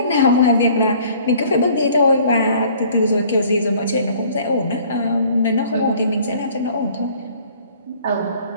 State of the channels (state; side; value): inverted; both; correlation -0.54